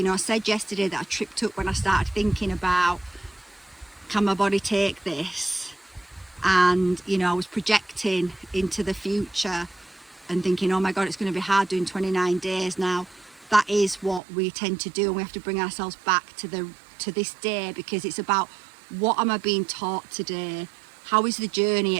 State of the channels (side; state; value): left; drops out; at 14.2 s